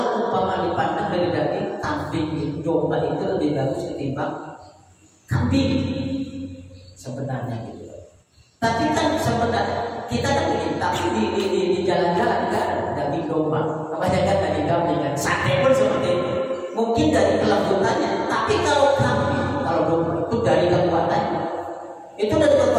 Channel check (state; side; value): identical; both; correlation 1.00